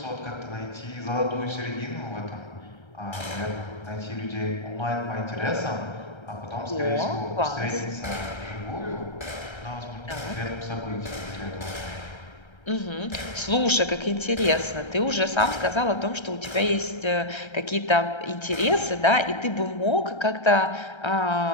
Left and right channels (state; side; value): late; right; 1.3 ms